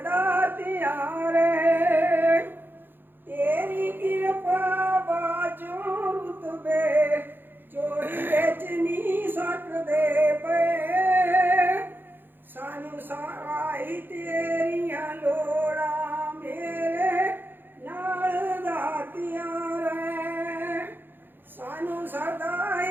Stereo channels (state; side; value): late; left; 0.097 ms